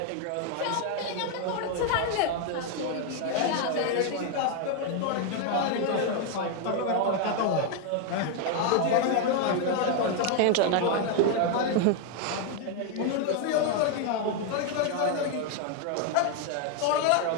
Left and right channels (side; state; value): both; different; correlation 0.01